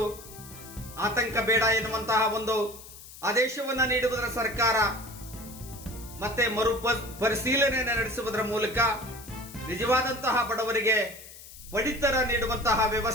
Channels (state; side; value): noise; left; hiss, 17 dB below the sound